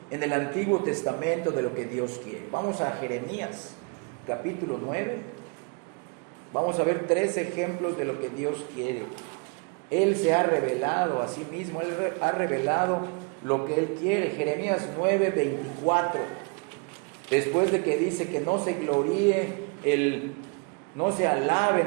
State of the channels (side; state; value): left; quieter; 34.1 dB